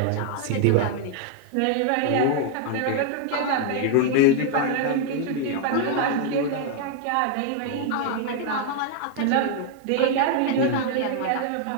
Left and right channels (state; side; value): different; both; correlation 0.00